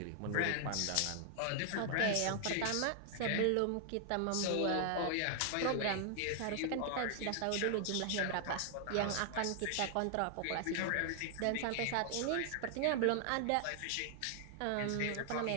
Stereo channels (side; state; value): both; different; correlation 0.00